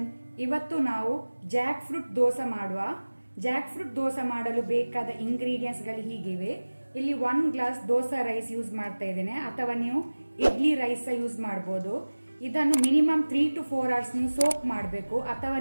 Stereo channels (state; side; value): inverted; both; correlation -1.00